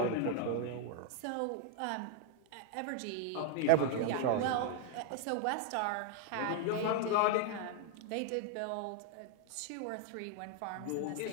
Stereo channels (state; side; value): different; both; correlation 0.01